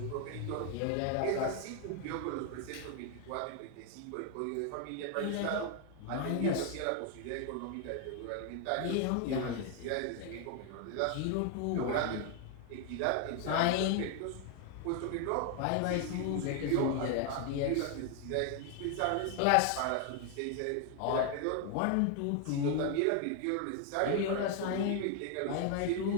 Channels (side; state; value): both; different; correlation 0.00